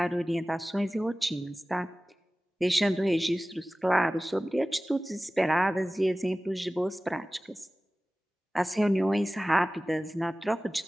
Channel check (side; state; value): both; normal; correlation 0.97